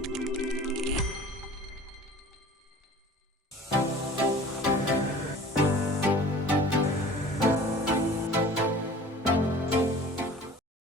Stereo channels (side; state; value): both; normal; correlation 0.44